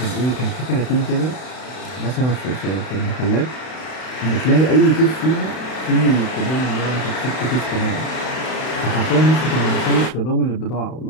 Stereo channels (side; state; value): right; late; 32 ms